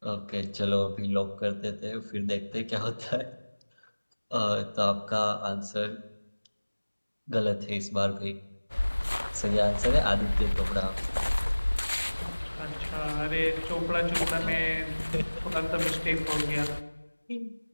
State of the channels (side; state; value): both; inverted; correlation -1.00